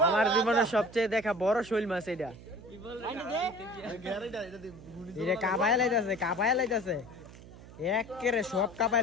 আমার জীবনের সবচেয়ে দেখা বড় শৈল মাছ এটা। এটা কাবাই লাইতাছে একেরে সব কাবাই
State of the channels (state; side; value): noise; right; hum, 18 dB below the sound